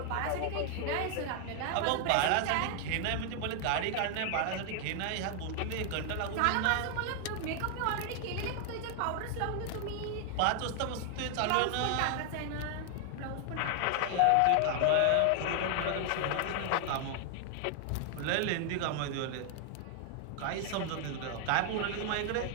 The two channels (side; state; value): both; different; correlation 0.00